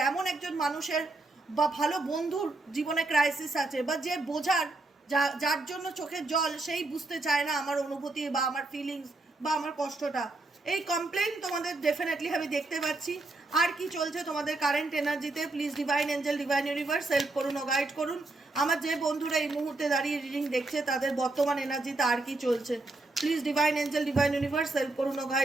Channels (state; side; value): quieter; left; 3.0 dB